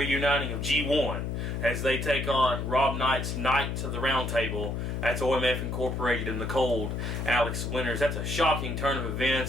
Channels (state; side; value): noise; left; hum, 3 dB below the sound